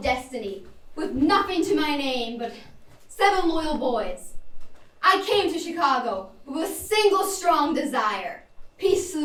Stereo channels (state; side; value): identical; both; correlation 1.00